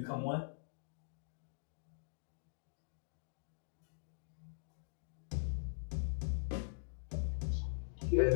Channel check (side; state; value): right; silent; digital silence